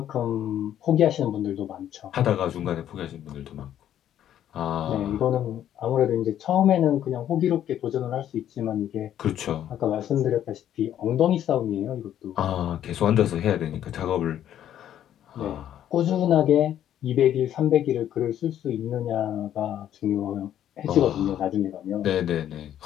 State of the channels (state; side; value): quieter; right; 10.9 dB